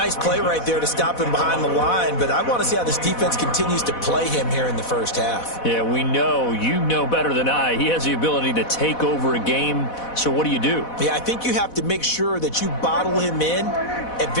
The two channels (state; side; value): late; right; 4.1 ms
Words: play right there to stop him behind the line, but I want to see how this defense continues to play him here in the first half. Yeah, we know. You know better than I. He has the ability to take over a game, so what do? Yeah, I think you have to make sure that you bottle him in at